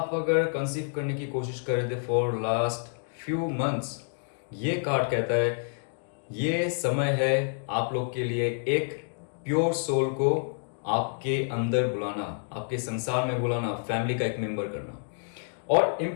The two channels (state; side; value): silent; right; digital silence